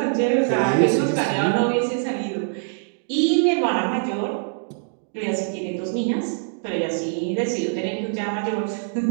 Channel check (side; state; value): left; silent; digital silence